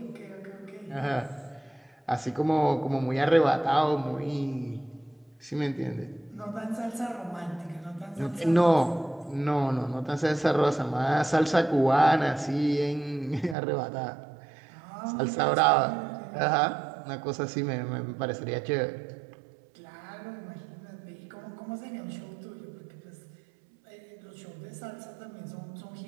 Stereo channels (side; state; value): left; drops out; at 13.6 s